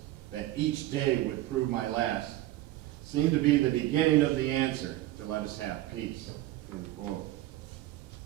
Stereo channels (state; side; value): quieter; left; 15.5 dB